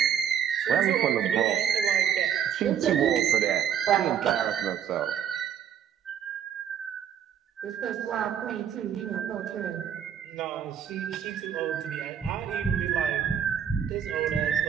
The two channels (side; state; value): left; quieter; 8.8 dB